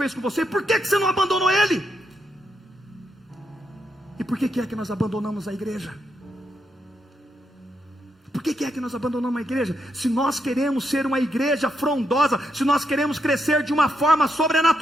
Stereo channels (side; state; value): both; normal; correlation 0.81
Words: fez com você? Por que você não abandonou ele? E por que é que nós abandonamos a igreja? Por que é que nós abandonamos a igreja? Se nós queremos ser uma igreja frondosa, se nós queremos crescer de uma forma